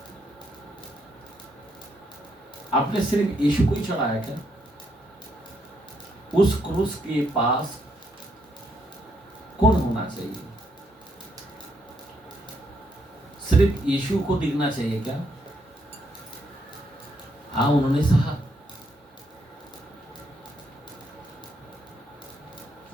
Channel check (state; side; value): normal; both; correlation 0.75